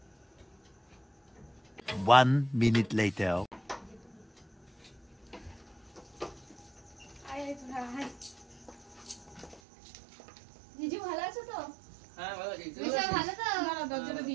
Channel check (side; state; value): left; drops out; at 9.6 s